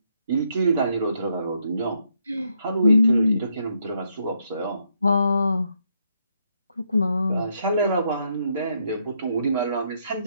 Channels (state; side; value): inverted; both; correlation -0.76